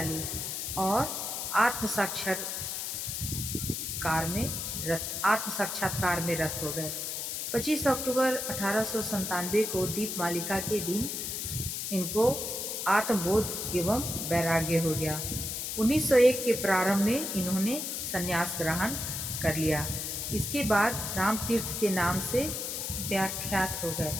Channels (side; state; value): left; noise; hiss, 4 dB below the sound